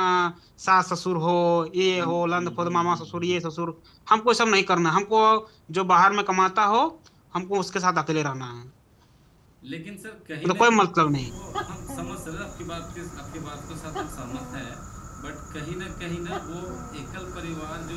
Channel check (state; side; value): identical; both; correlation 1.00